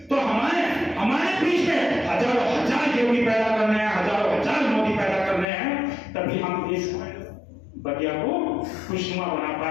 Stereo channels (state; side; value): drops out; right; at 5.5 s